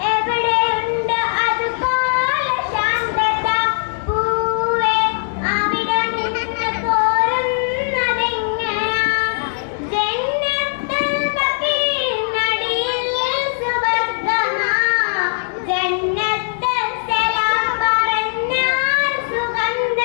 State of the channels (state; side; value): silent; right; 66 dB below the other